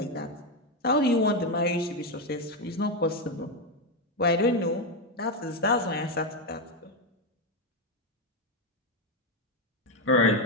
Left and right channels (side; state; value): both; normal; correlation 0.07